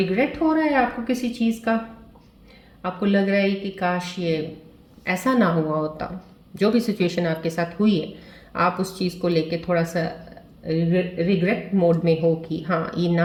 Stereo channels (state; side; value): identical; both; correlation 1.00